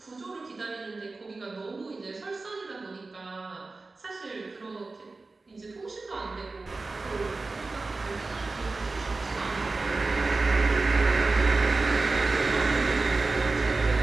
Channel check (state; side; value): quieter; left; 3.6 dB